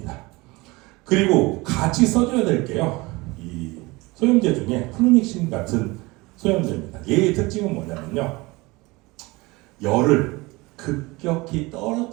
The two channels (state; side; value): quieter; left; 23.0 dB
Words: 그리고 같이 써줘야 될 게요, 이 소염제 중에 플루믹신 같은 소염제입니다. 얘의 특징은 뭐냐면요, 열을 급격히